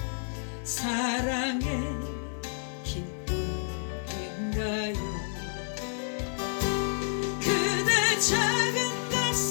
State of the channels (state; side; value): silent; right; 58 dB below the other